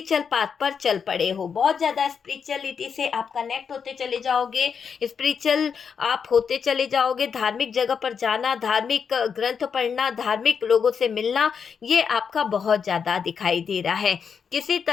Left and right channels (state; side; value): quieter; right; 6.5 dB